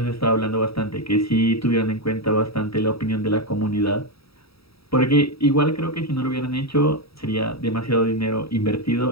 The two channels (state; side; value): late; right; 0.77 ms